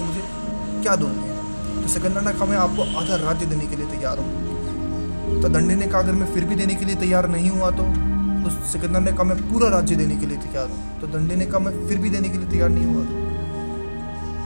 मुझे क्या दोगे। तो सिकंदर ने कहा मैं आपको आधा राज्य देने के लिए तैयार हूँ। तो दंडे ने कहा अगर मैं फिर भी देने के लिए तैयार नहीं हुआ तो सिकंदर ने कहा मैं पूरा राज्य देने के लिए तैयार हूँ। तो दंडे ने कहा मैं फिर भी देने के लिए तैयार नहीं हुआ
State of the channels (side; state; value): both; inverted; correlation -1.00